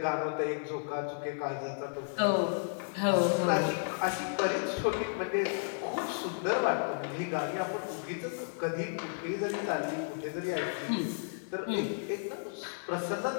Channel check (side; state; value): right; silent; 56 dB below the other